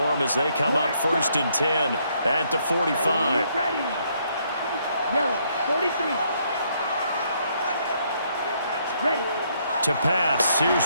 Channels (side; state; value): both; inverted; correlation -0.71